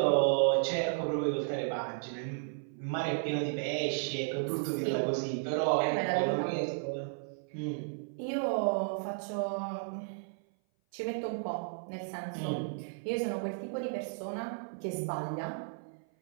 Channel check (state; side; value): silent; left; 55 dB below the other